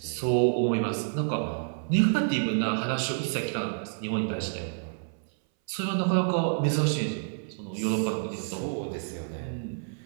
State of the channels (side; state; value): left; silent; 59 dB below the other